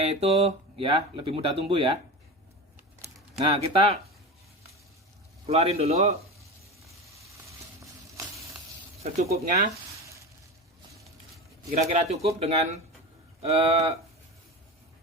itu ya lebih mudah tumbuh ya. Nah, kita keluarin dulu secukupnya, kira-kira cukup dengan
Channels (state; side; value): normal; both; correlation 0.27